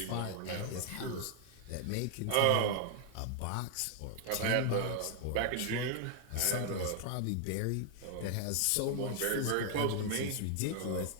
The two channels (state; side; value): different; both; correlation 0.00